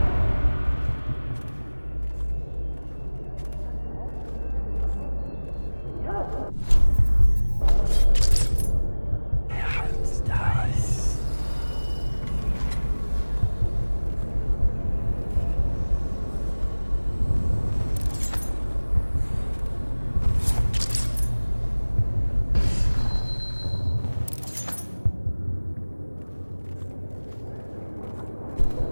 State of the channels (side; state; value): both; inverted; correlation -1.00